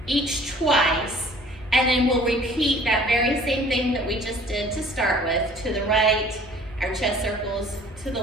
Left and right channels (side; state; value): both; normal; correlation 0.51